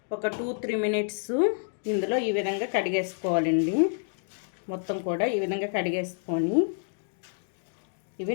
ఒక 2-3 మినిట్స్ ఇందులో ఈ విధంగా కడిగేసుకోవాలండి. మొత్తం కూడా ఈ విధంగా కడిగేసుకొని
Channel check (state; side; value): silent; right; digital silence